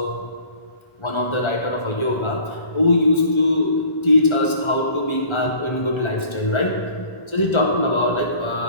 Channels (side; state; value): right; late; 1.3 ms